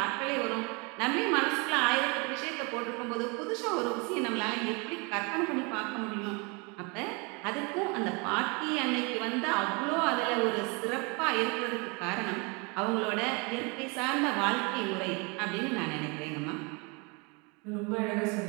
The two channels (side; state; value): left; quieter; 30.5 dB